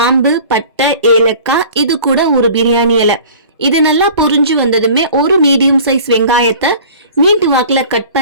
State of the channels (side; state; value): both; inverted; correlation -0.45